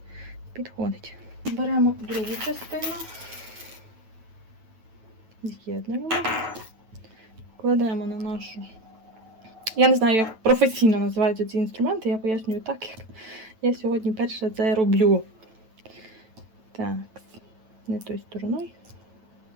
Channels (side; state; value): left; late; 9.1 ms